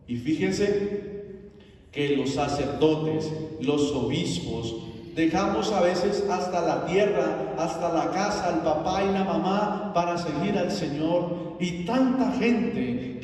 Y fíjense que los sacerdotes, los obispos, dejamos a veces hasta la tierra, hasta la casa, el papá y la mamá para seguir al Señor. Y tanta gente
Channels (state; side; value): identical; both; correlation 1.00